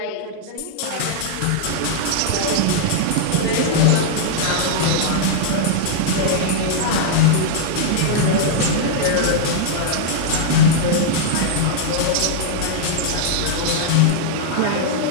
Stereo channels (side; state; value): both; different; correlation -0.01